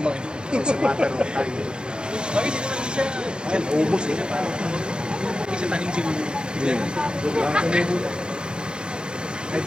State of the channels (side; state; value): left; late; 0.049 ms